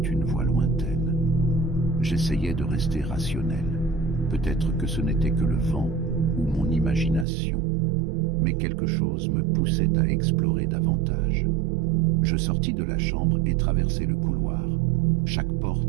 voix lointaine. J'essayais de rester rationnel. Peut-être que ce n'était que le vent ou mon imagination, mais quelque chose me poussait à explorer davantage. Je sortis de la chambre et traversai le couloir, chaque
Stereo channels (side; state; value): left; drops out; at 7.2 s